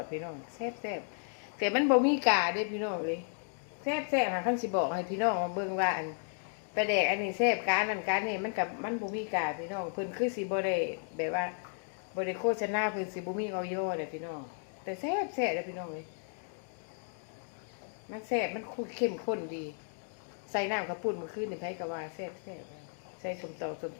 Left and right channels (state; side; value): silent; right; 55 dB below the other